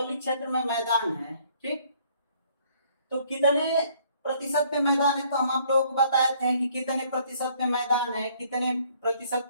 क्षेत्र में मैदान है, ठीक। तो कितने प्रतिशत पे मैदान है, तो हम आप लोगों को बताए थे कि कितने प्रतिशत पे मैदान है, कितने प्रतिशत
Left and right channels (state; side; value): inverted; both; correlation -0.62